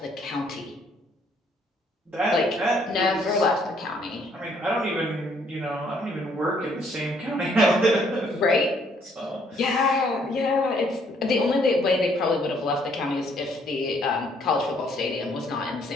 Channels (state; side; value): normal; both; correlation 0.66